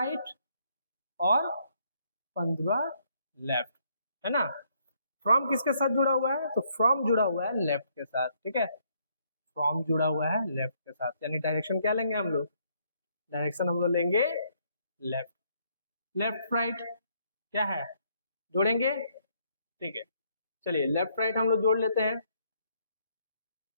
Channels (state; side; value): inverted; both; correlation -0.70